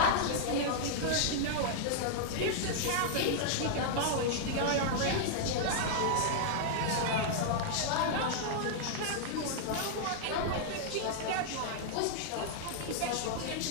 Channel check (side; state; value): both; different; correlation -0.01